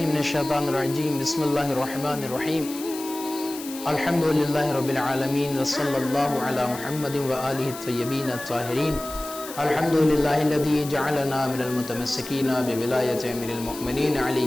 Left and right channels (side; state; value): left; noise; hiss, 13 dB below the sound